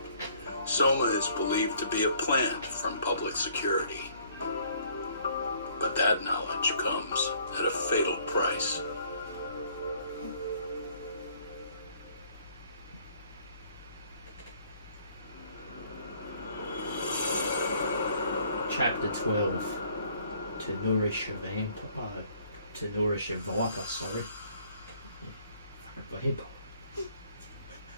Soma is believed to be a plant from public security. But that knowledge comes at a fatal price. Chapter 12. To nourish a vampire. To nourish a viper, sorry. Vampire.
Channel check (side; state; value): both; inverted; correlation -0.61